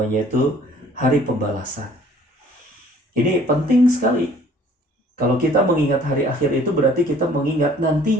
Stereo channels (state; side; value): normal; both; correlation 0.55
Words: itu hari pembalasan. Ini penting sekali. Kalau kita mengingat hari akhir itu berarti kita mengingat